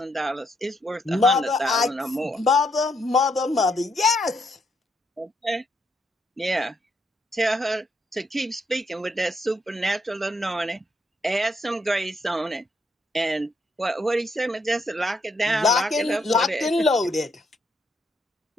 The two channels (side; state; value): both; normal; correlation 0.75